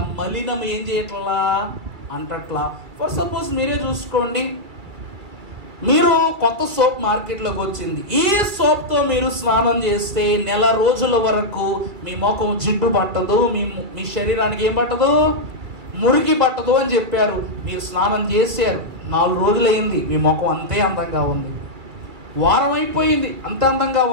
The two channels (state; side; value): late; left; 2.5 ms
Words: మలినం ఏం చేయట్లా అంటట్లా. ఫర్ సపోజ్ మీరే చూసుకోండి, మీరు కొత్త సోప్ మార్కెట్లోకి వచ్చింది. ఈ సోప్తో మీరు స్నానం చేస్తే నెల రోజుల వరకు మీ ముఖం జిడ్డు పట్టదు, మీ శరీరానికి ఏం పట్టదు? మురికి పట్టదు అని చెప్పారు. మీరు స్నానం చేశారు, 4 రోజులు అయింది, మీ ముఖం అంతే అందంగా ఉంది. వారం అయిపోయింది, అంతే అందంగా